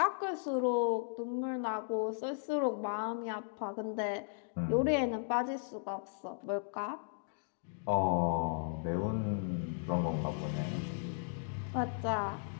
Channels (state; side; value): silent; right; digital silence